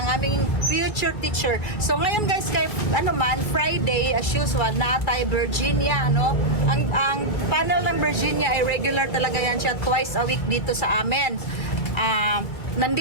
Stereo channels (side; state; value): right; late; 2.1 ms